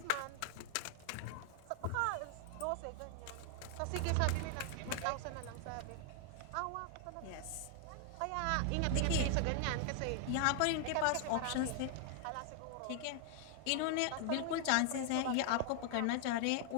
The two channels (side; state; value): both; different; correlation 0.00